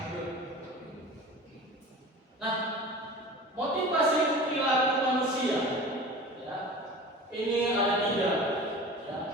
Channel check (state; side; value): normal; both; correlation 0.37